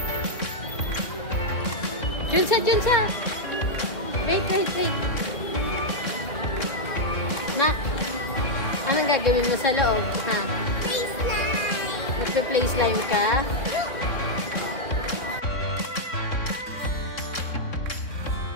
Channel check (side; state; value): right; late; 3.6 ms